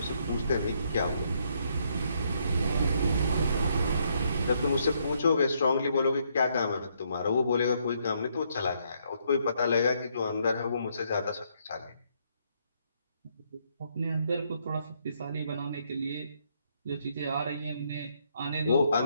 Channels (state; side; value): inverted; both; correlation -0.72